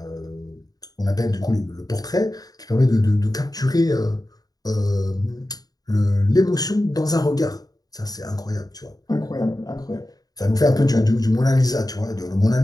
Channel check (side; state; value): right; late; 0.18 ms